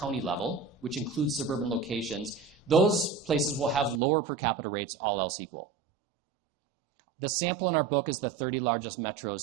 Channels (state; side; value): drops out; left; at 4.0 s